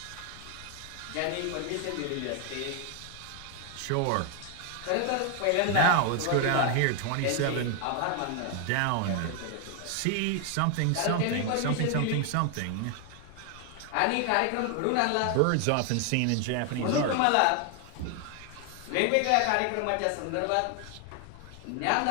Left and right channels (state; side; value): different; both; correlation 0.00